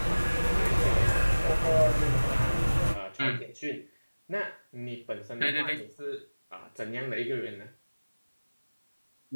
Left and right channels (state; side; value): inverted; both; correlation -1.00